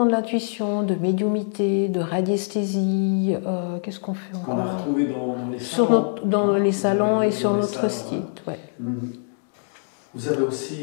de l'intuition, de médiumité, de radiesthésie. Qu'est-ce qu'on fait encore? Qu'on a retrouvé dans les salons. Dans les salons et sur notre site. Ouais. Vous avez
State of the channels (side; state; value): right; silent; digital silence